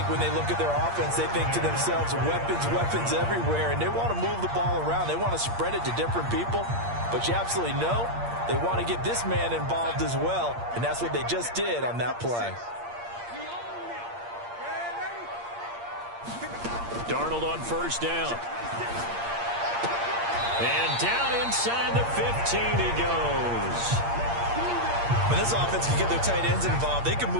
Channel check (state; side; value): late; left; 8.6 ms